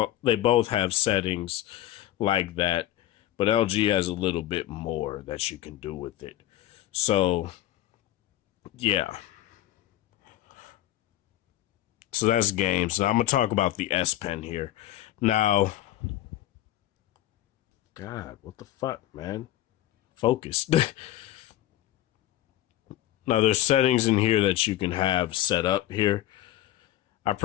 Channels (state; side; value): quieter; right; 14.1 dB